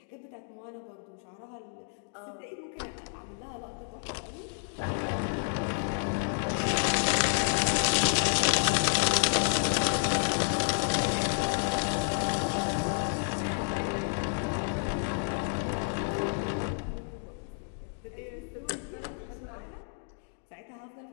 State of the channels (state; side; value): silent; right; 57 dB below the other